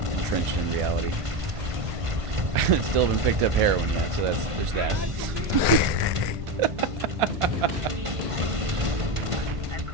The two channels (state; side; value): late; left; 1.5 ms